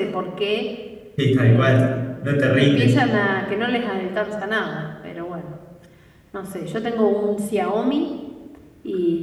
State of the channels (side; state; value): both; identical; correlation 1.00